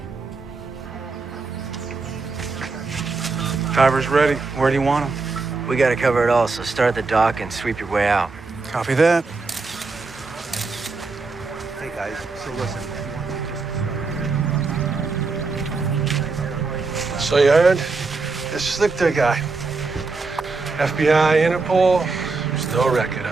Driver's ready. Where do you want him? We gotta cover it all, so start at the dock and sweep your way out. Copy that. Hey, guys, so listen. So you heard? This Slichter guy. FBI, Interpol, there's no record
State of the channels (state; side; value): quieter; left; 4.0 dB